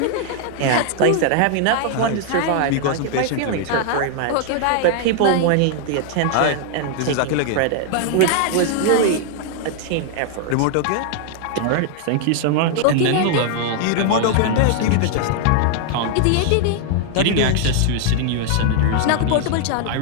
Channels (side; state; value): both; different; correlation 0.00